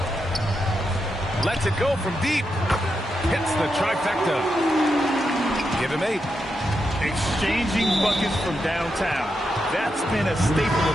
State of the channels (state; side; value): normal; both; correlation 0.85